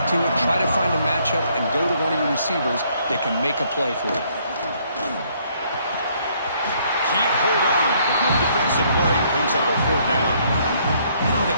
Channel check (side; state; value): both; inverted; correlation -0.66